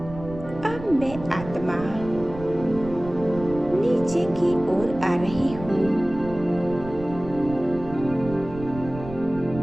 अब मैं आत्मा नीचे की ओर आ रही हूँ।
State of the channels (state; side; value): noise; right; rumble, 13 dB below the sound